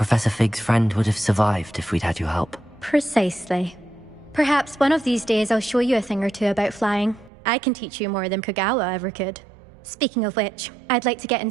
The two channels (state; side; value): drops out; left; at 7.3 s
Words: Fig's friend would have survived if we'd had your help. Precisely. Perhaps one of these days I'll show you a thing or two about flying. I can teach you more than Kogawa ever could. Speaking of which, I'd like to get in